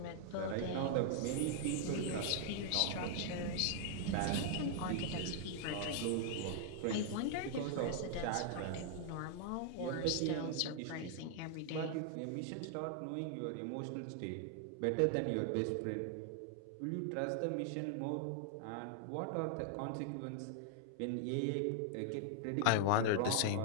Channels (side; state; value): both; different; correlation 0.00